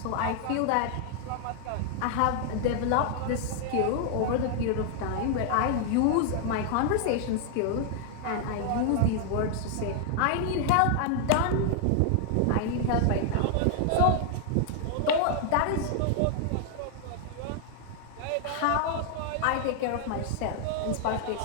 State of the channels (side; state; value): both; different; correlation 0.00